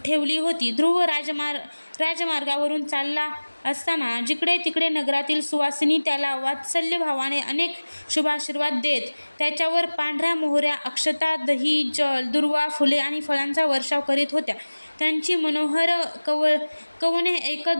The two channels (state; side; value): inverted; both; correlation -1.00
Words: ठेवली होती. ध्रुव राजमार्गावरून चालला असताना जिकडे तिकडे नगरातील सुवासिनी त्याला वात्सल्यभावाने अनेक शुभाशीर्वाद देत त्याच्यावर पांढऱ्या मोहऱ्या, अक्षता, दही, जल, दुर्वा, फुले आणि फळांचा वर्षाव करीत होत्या. त्यांची मनोहर कवने